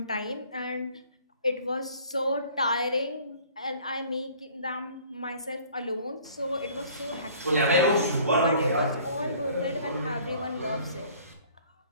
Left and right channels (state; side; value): inverted; both; correlation -0.53